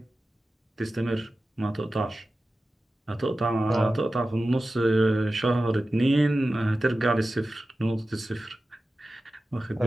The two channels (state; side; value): normal; both; correlation 0.94